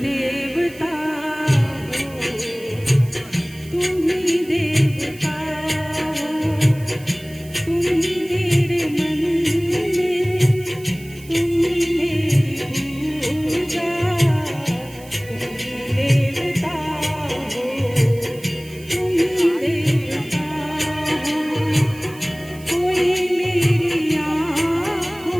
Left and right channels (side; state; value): right; noise; hiss, 21 dB below the sound